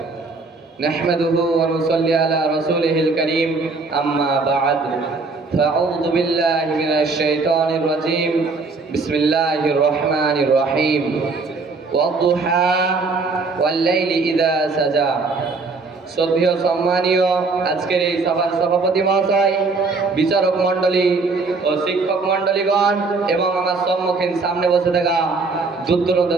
نحمده ونصلي على رسوله الكريم أما بعد فأعوذ بالله من الشيطان الرجيم بسم الله الرحمن الرحيم والضحى والليل إذا سجى শ্রদ্ধেয় সম্মানীয় আজকের এই সভার সভাপতি মহাশয়, বিচারক মণ্ডলী ও শিক্ষক মণ্ডলীগণ এবং আমার সম্মুখীন সামনে বসে থাকা দূর দূরান্ত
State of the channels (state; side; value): quieter; left; 4.0 dB